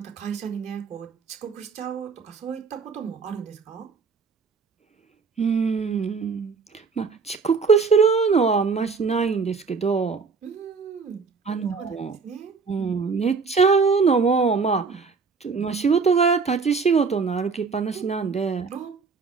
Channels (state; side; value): quieter; left; 5.0 dB